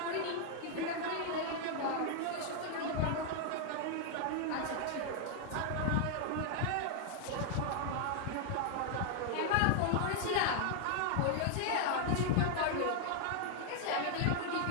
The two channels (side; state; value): both; different; correlation 0.00